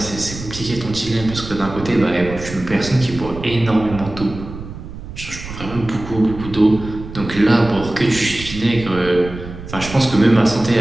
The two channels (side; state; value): right; noise; rumble, 12 dB below the sound